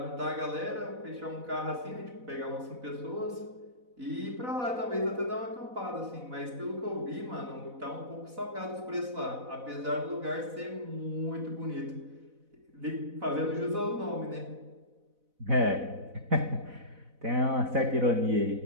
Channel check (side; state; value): left; late; 4.0 ms